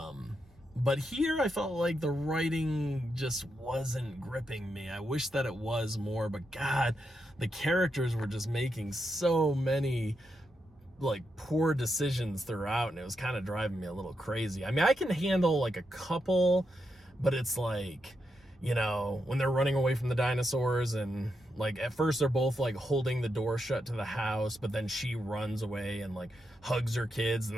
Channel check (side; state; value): both; normal; correlation 0.84